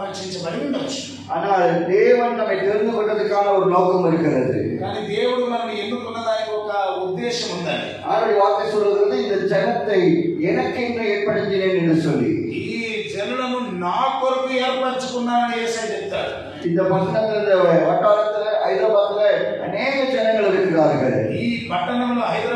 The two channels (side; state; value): both; identical; correlation 1.00